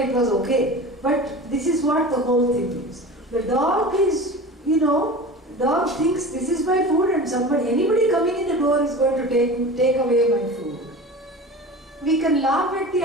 was okay. But this is what the whole thing is. The dog is, dog thinks this is my food and anybody coming in the door is going to take away my food. we can laugh at the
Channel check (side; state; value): both; normal; correlation 0.34